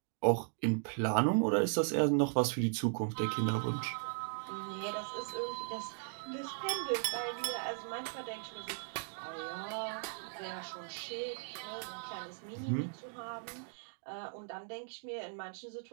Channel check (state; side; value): silent; left; digital silence